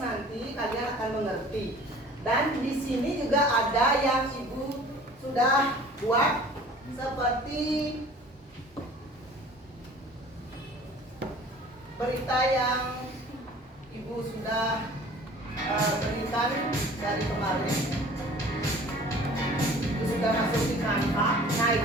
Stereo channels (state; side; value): normal; both; correlation 0.47